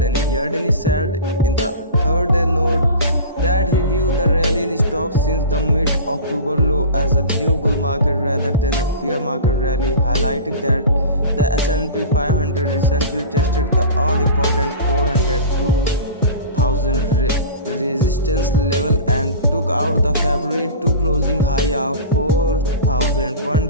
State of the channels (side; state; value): both; inverted; correlation -0.34